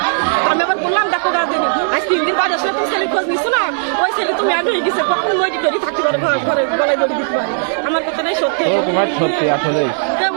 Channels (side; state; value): left; silent; 69 dB below the other